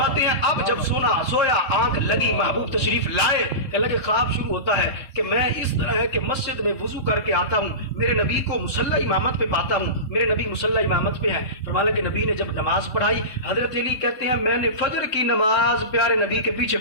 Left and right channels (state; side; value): late; right; 3.4 ms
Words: हैं अब जब सोया आंख लगी महबूब तशरीफ लाए, कहने लगे ख्वाब शुरू होता है कि मैं इस तरह है कि मस्जिद में वुजू करके आता हूँ, मेरे नबी को मुसल्ला इमामत पे पाता हूँ, मेरे नबी मुसल्ला इमामत पे हैं। फरमाया कि नबी ने जब नमाज पढ़ाई, हजरत अली कहते हैं मैंने फजर की नमाज प्यारे नबी के पीछे